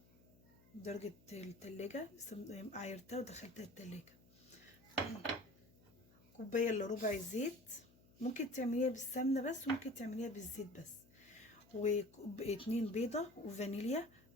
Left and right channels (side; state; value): left; noise; hum, 26 dB below the sound